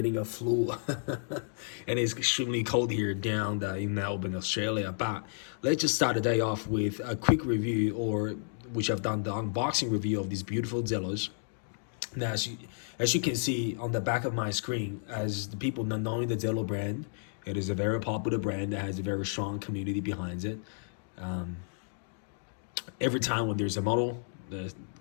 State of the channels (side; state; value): right; silent; digital silence